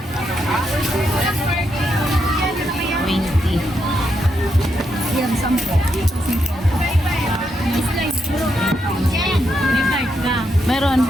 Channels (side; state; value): both; normal; correlation 0.81